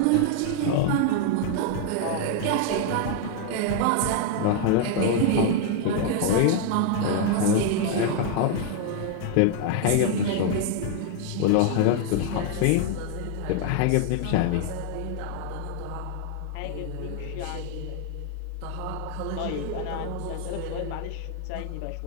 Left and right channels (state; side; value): different; both; correlation 0.00